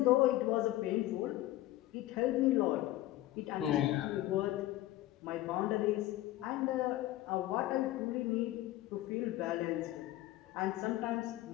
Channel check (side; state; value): right; quieter; 15.6 dB